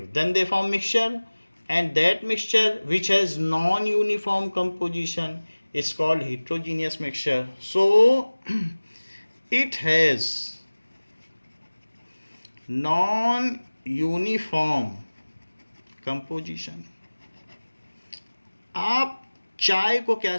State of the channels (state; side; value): inverted; both; correlation -1.00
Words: then they form mixture, and that mixture which has non-uniform composition is called heterogeneous mixture. So it has non-uniform composition. आप चाय को क्या